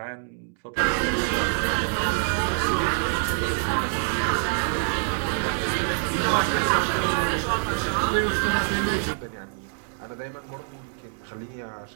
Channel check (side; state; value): left; silent; 61 dB below the other